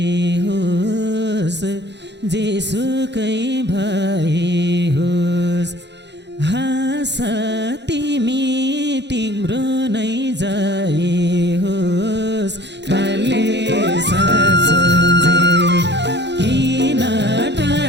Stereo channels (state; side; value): late; left; 0.51 ms